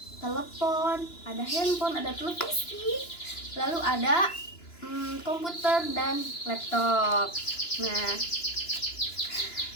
telepon, ada handphone, ada televisi, lalu ada komputer dan laptop. Nah,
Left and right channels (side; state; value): right; late; 2.9 ms